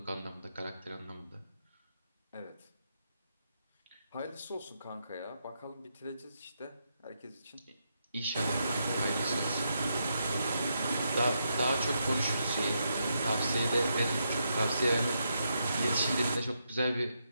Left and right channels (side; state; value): both; inverted; correlation -0.82